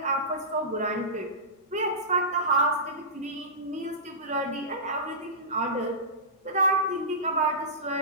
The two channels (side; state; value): both; normal; correlation -0.20